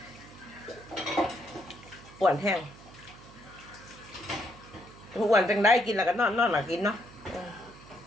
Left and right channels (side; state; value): right; noise; hum, 20 dB below the sound